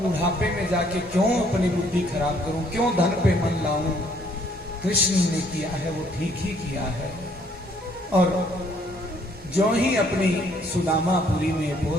बुढ़ापे में जाके क्यों अपनी बुद्धि खराब करूं, क्यों धन पे मन लाऊं। कृष्ण ने किया है वो ठीक ही किया है। और जो ही अपनी सुदामापुरी में,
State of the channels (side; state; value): both; normal; correlation 0.65